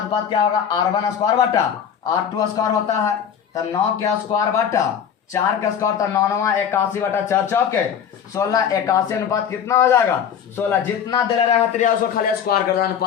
क्या होगा r1 स्क्वायर बटा r2 स्क्वायर होता है, तो 9 के स्क्वायर बटा 4 का स्क्वायर तो 9 81 बटा 4 चौके 16 81 अनुपात कितना हो जाएगा 16। जितना दे रहेगा त्रिया उसको खाली स्क्वायर कर देना,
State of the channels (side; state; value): right; quieter; 8.1 dB